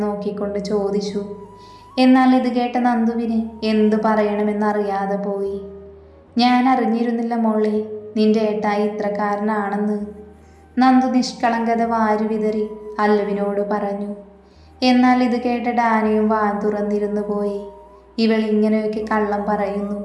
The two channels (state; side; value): identical; both; correlation 1.00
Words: നോക്കിക്കൊണ്ട് ചോദിച്ചു. എന്നാൽ ഇത് കേട്ട നന്ദുവിന് എന്തു പറയണമെന്നറിയാതെ പോയി. ഞാൻ അറിഞ്ഞിരുന്നില്ല മോളെ നിന്റെ ഏട്ടായി ഇത്രക്കാരനാണെന്ന്. നന്ദു നിഷ്കളങ്കത വാരി വിതറി അല്ലുവിനോട് പറഞ്ഞു. എന്നാൽ ഇത് കേട്ട ഡാനിയും വാ തുറന്നിരുന്നു പോയി. ഇവൾ ഇങ്ങനെയൊക്കെ കള്ളം പറയുന്നു